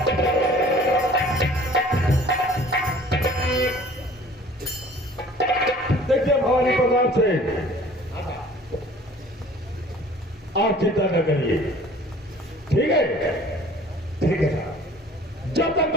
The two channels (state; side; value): normal; both; correlation 0.50